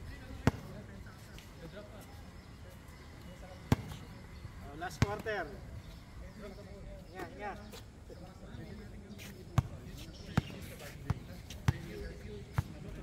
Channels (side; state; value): both; identical; correlation 1.00